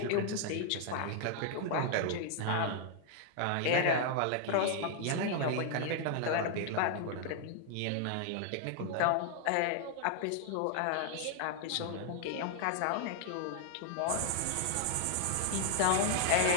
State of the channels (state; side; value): different; both; correlation 0.00